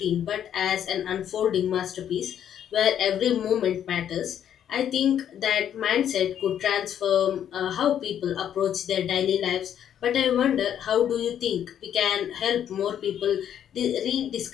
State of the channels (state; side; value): quieter; right; 9.7 dB